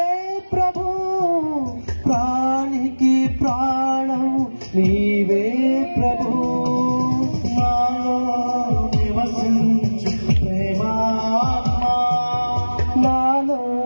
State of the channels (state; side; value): inverted; both; correlation -1.00